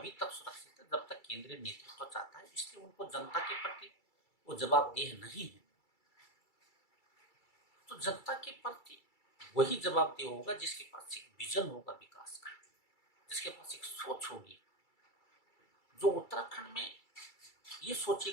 तक सुरक्षित है जब तक केंद्रीय नेतृत्व चाहता है, इसलिए उनको जनता के प्रति वो जवाबदेह नहीं है। तो जनता के प्रति वही जवाबदेह होगा जिसके पास एक विजन होगा विकास का, जिसके पास एक सोच होगी, जो उत्तराखंड में ये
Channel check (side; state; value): right; late; 2.3 ms